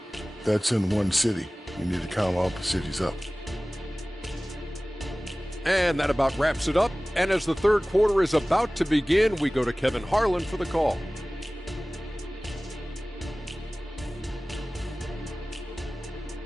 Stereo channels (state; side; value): normal; both; correlation 0.98